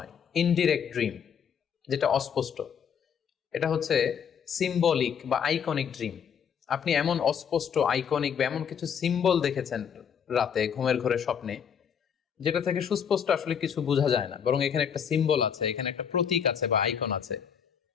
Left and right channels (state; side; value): quieter; right; 7.6 dB